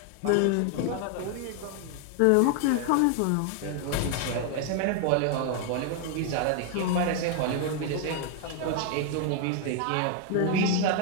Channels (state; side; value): different; both; correlation 0.01